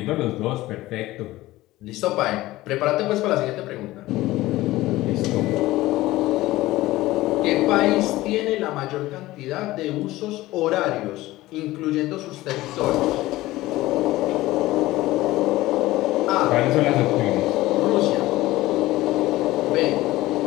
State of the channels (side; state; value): right; quieter; 17.5 dB